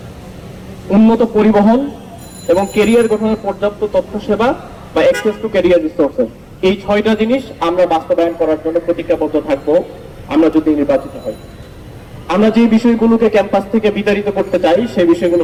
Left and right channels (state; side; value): identical; both; correlation 1.00